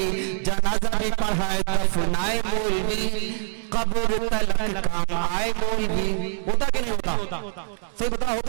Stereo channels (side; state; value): left; silent; digital silence